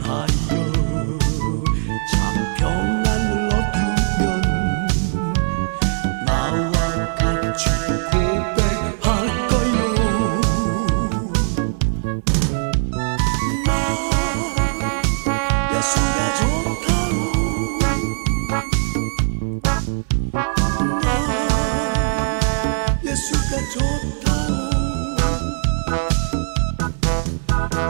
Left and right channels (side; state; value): left; silent; digital silence